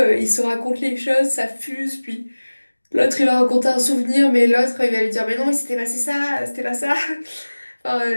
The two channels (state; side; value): inverted; both; correlation -1.00